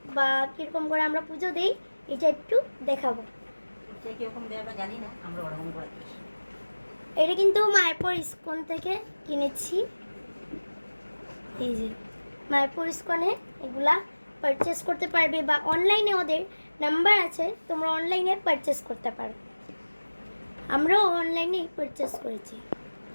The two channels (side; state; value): both; inverted; correlation -1.00